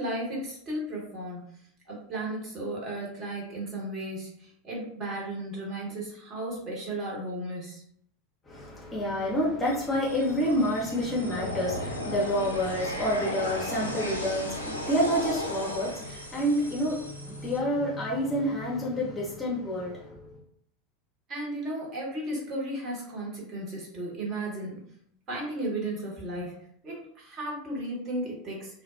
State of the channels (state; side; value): normal; both; correlation 0.14